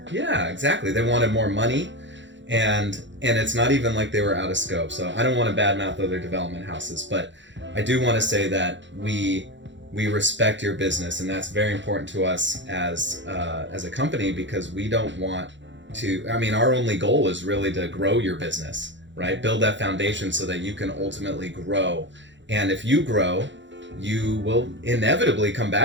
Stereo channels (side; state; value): left; late; 0.54 ms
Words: Yeah, exactly. They wanted more money, and it's not even like they were out of scope. So I don't want to badmouth other development houses, but I do want to say that we respect your business, and that's very important to us as a company, because we don't want to, I mean, our only goal is really to grow your business, right? Build that foundation so that you can ultimately grow. And if you grow, you will inevitably come